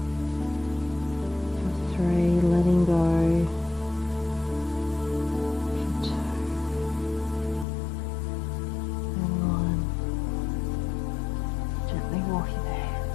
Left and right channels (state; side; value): drops out; right; at 7.7 s